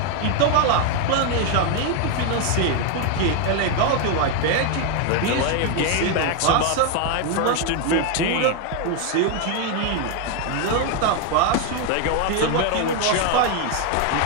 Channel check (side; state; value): both; different; correlation 0.01